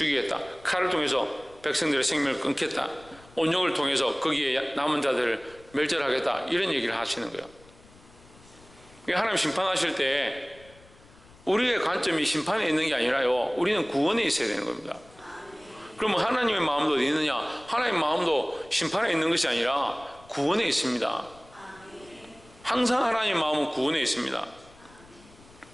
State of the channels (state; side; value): noise; left; rumble, 25 dB below the sound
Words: 칼을 통해서 백성들의 생명을 끊겠다. 온영을 통해서 거기에 남은 자들을 멸절하겠다, 이런 얘기를 하시는 거예요. 하나님 심판하실 때 우리의 관점이 심판에 있는 게 아니라요, 우리는 구원에 있어야 되는 겁니다. 그러면 하나님의 마음도 어디 있느냐? 하나님의 마음도 심판에 있는 것이 아니라 구원에 있습니다. 항상 하나님의 마음은 구원에 있습니다.